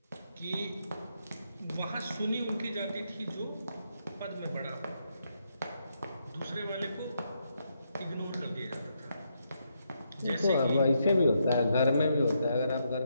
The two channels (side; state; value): both; inverted; correlation -0.79